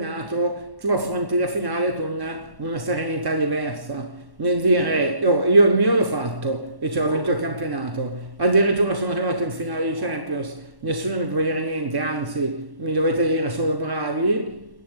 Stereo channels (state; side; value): late; left; 1.1 ms